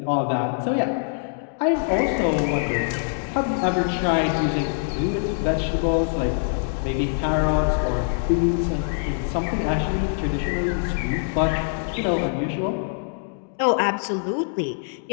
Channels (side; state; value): right; silent; digital silence